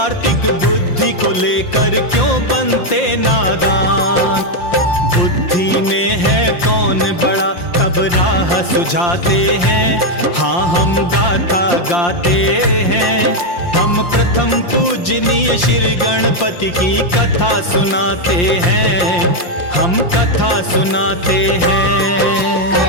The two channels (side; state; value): right; late; 5.7 ms